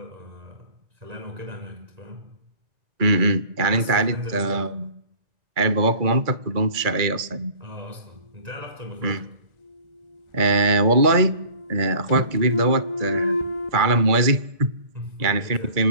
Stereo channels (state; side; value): late; left; 2.3 ms